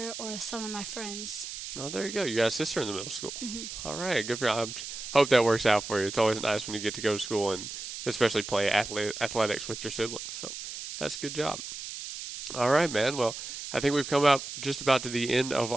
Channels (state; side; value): noise; right; hiss, 8 dB below the sound